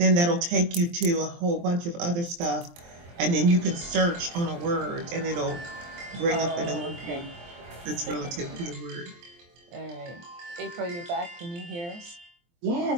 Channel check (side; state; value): left; late; 23 ms